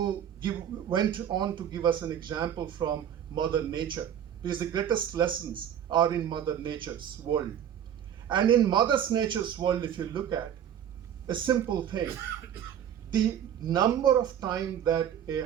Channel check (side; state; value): left; quieter; 9.6 dB